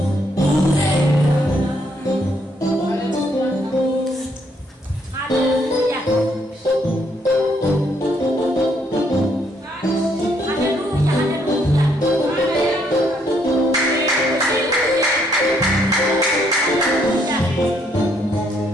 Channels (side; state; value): both; normal; correlation 0.71